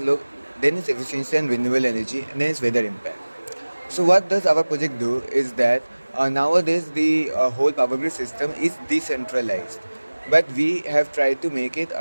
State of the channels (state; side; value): inverted; both; correlation -1.00